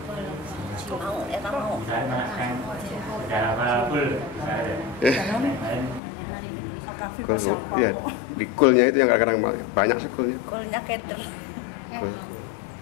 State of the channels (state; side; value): drops out; right; at 6.0 s